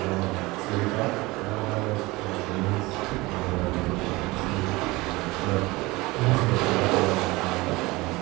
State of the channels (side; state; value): left; quieter; 21.8 dB